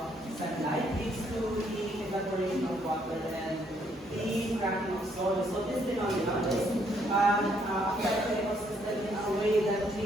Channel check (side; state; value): both; normal; correlation 0.70